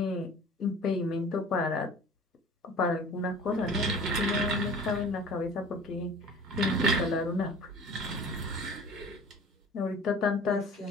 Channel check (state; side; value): normal; both; correlation 0.44